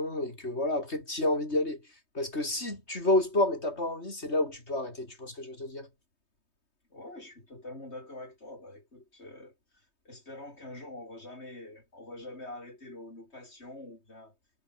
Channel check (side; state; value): right; late; 3.2 ms